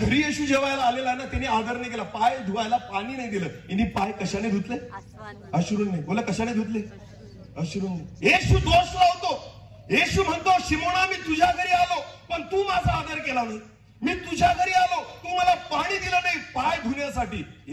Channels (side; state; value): both; identical; correlation 1.00